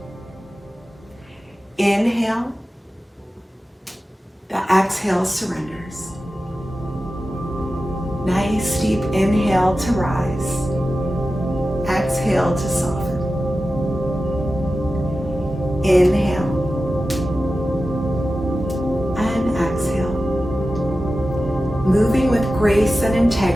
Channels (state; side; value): normal; both; correlation 0.93